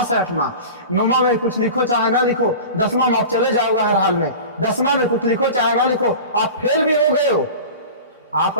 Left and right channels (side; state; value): both; inverted; correlation -0.35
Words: है 8वां। 9वां में कुछ लिखो चाहे ना लिखो, 10वां में आप चले जाओगे हर हाल में। 10वां में कुछ लिखो चाहे ना लिखो, आप फेल भी हो गए हो, आप